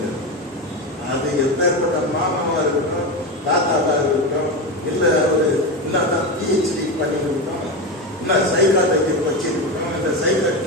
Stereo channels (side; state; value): both; normal; correlation 0.17